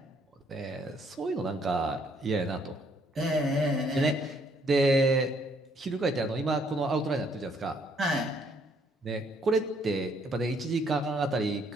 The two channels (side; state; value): both; normal; correlation 0.67